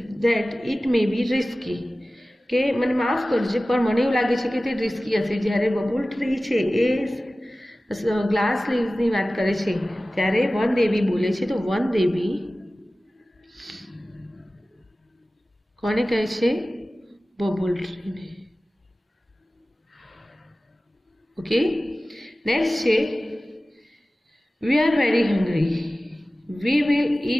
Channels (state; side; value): normal; both; correlation 0.97